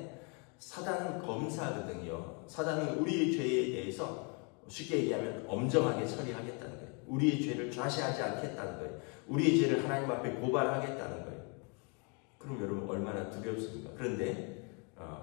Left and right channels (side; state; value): right; quieter; 35.1 dB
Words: 사단은 검사거든요. 사단은 우리의 죄에 대해서 쉽게 얘기하면 엄정하게 처리하겠다는 거예요. 우리의 죄를 좌시하지 않겠다는 거예요. 우리의 죄를 하나님 앞에 고발하겠다는 거예요. 그럼 여러분 얼마나 두렵습니까? 그런데